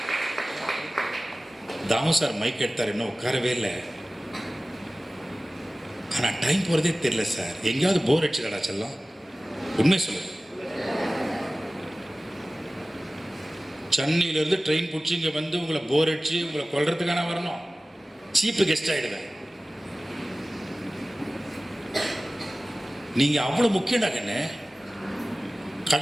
தாமு சார் மைக் எடுத்தார், இன்னும் உட்காரவே இல்லை. ஆனால் டைம் போகிறதே தெரியல சார். எங்கேயாவது போர் அடிச்சுடா செல்லம், உண்மை சொல்லு. சென்னையிலேருந்து ட்ரெயின் பிடிச்சி இங்கே வந்து உங்களை போர் அடிச்சு உங்களை கொல்றதுக்கான வரணும். சீப்பு கெஸ்ட் ஆகிடுவேன். நீங்கள் அவ்வளோ முக்கியம்டா கண்ணு.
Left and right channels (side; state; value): both; normal; correlation 0.97